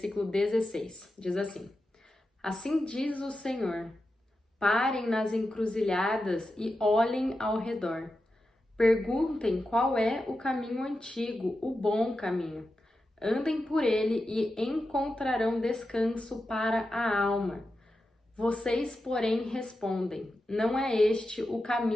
16. Diz assim: Assim diz o Senhor: parem nas encruzilhadas e olhem ao redor. Perguntem qual é o caminho antigo, o bom caminho. Andem por ele e encontrarão descanso para a alma. Vocês, porém, respondem: não é este o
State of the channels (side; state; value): both; normal; correlation 0.90